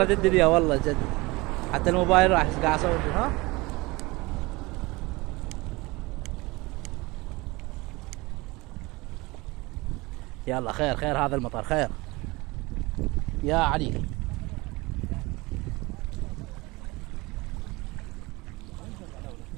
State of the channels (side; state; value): left; quieter; 23.1 dB